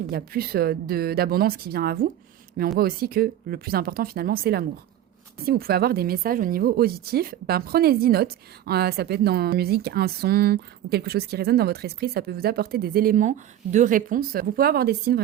où il y a plus d'abondance qui vient à vous. Mais on voit aussi que le plus important finalement, c'est l'amour. Si vous pouvez avoir des messages au niveau auditif, ben prenez-y note. Ça peut être dans la musique, un son ou quelque chose qui résonne dans votre esprit. Ça peut vous apporter des éléments de réponse. Vous pouvez avoir des signes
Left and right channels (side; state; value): left; quieter; 11.7 dB